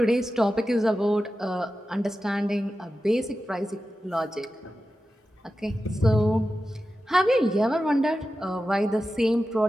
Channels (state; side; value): normal; both; correlation 0.93